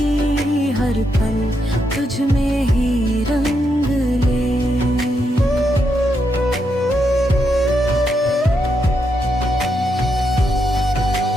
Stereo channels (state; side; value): normal; both; correlation 0.81